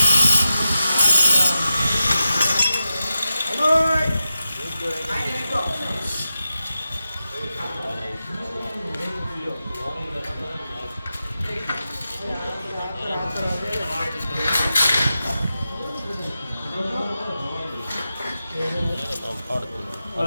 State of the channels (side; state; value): both; inverted; correlation -0.90